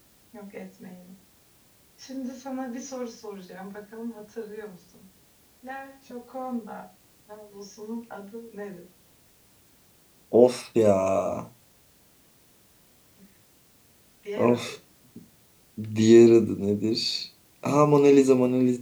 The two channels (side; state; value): both; identical; correlation 1.00